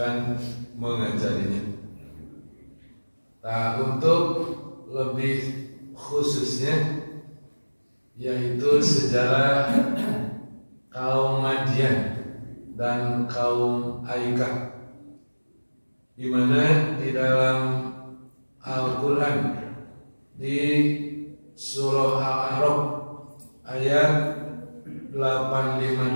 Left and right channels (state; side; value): inverted; both; correlation -1.00